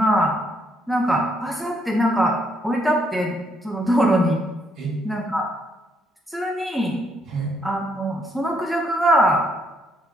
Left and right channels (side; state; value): both; normal; correlation 0.73